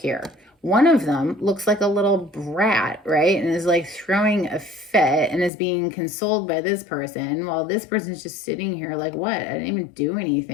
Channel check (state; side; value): drops out; right; at 5.5 s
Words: One of them looks like a little brat, right? And is like throwing a fit and is being consoled by this person, while this person's just sitting here like, what? I didn't even do